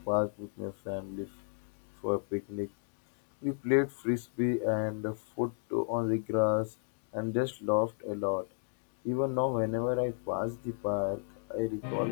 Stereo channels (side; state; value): right; silent; digital silence